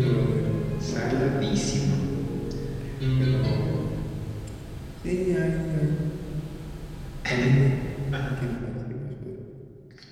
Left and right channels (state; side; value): identical; both; correlation 1.00